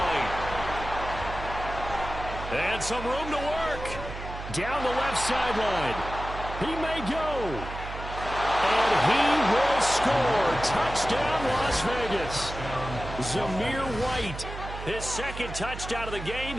And some room to work. Down the left sideline. He may go. And he will score. Touchdown, Las Vegas. Zamir White, his 2nd touchdown of the game,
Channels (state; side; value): noise; right; hum, 9 dB below the sound